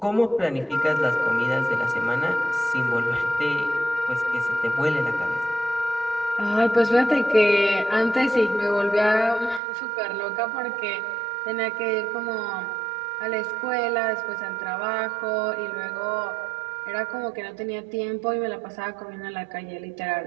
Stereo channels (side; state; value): left; drops out; at 9.6 s